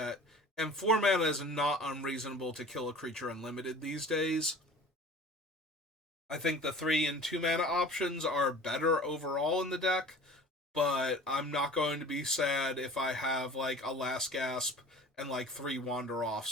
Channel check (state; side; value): normal; both; correlation 0.43